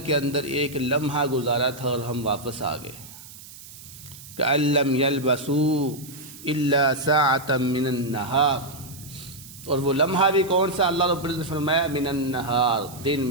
کے اندر ایک لمحہ گزارا تھا اور ہم واپس آ گئے۔ كَأَن لَّمْ يَلْبَثُوا إِلَّا سَاعَةً مِّنَ النَّهَارِ، اور وہ لمحہ بھی کون سا؟ اللہ رب العزت نے فرمایا من النہار، دن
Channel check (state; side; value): noise; right; hiss, 17 dB below the sound